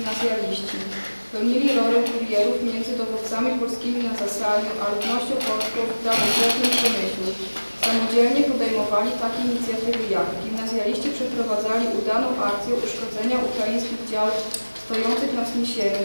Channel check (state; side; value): inverted; both; correlation -1.00